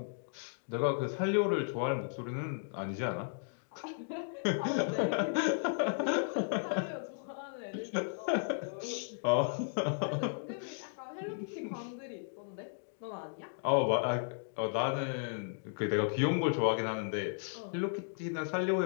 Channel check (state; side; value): silent; right; digital silence